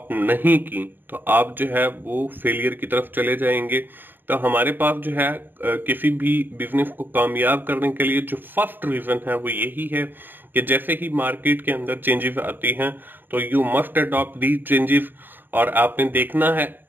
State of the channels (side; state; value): left; late; 0.093 ms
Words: नहीं की तो आप जो है वो फेलियर की तरफ चले जाएंगे। तो हमारे पास जो है किसी भी बिजनेस को कामयाब करने के लिए जो फर्स्ट रीजन है वो यही है कि जैसे ही मार्केट के अंदर चेंजेस आती हैं तो you must adopt the changes. और आपने देखना है